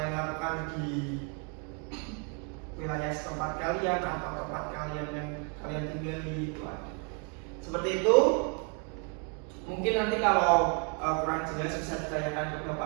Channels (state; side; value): quieter; left; 38.0 dB